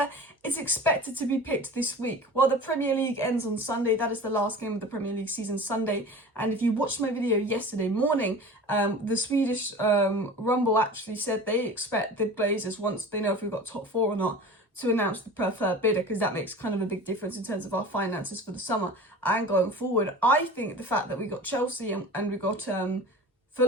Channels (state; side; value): normal; both; correlation 0.37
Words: is expected to be picked this week. While the Premier League ends on Sunday, that is the last game of the Premier League season, Sunday. And if you watched my video yesterday morning, the Swedish Rumble actually said they expect the Glazers, once they know if we've got top four or not, to announce the preferred bidder, because that makes kind of a big difference in terms of our finances for the summer and going forward. I think the fact that we got Chelsea and we got